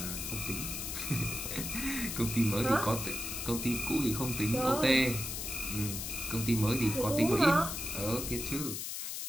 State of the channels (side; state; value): left; noise; hiss, 5 dB below the sound